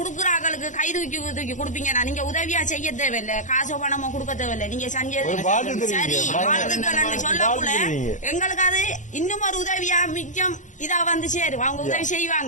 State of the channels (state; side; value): late; right; 0.36 ms